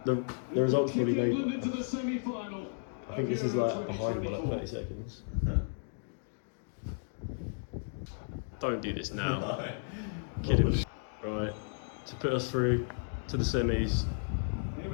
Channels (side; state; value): right; silent; digital silence